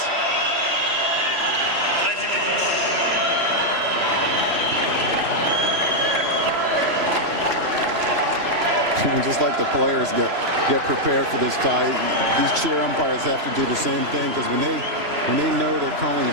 And just like the players get prepared for this tie, these chair umpires have to do the same thing, because when they know they're calling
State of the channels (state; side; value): late; left; 3.0 ms